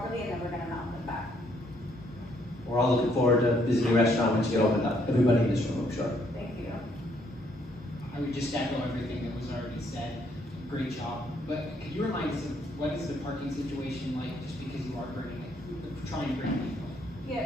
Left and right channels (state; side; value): normal; both; correlation 0.69